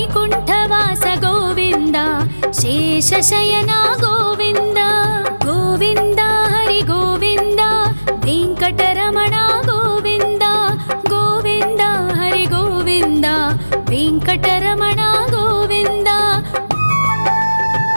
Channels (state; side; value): inverted; both; correlation -1.00